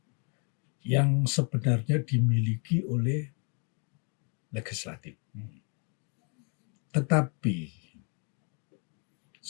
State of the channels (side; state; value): right; quieter; 38.2 dB